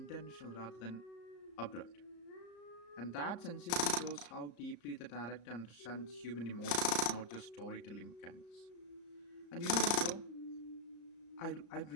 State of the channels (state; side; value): late; right; 34 ms